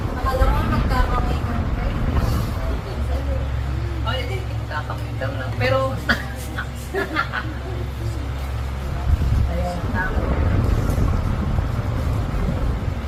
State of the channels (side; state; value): both; identical; correlation 1.00